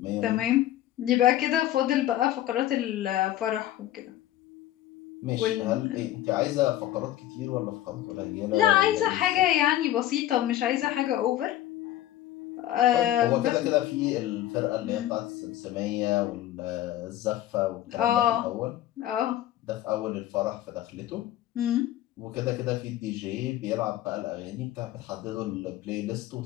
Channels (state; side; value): quieter; right; 13.5 dB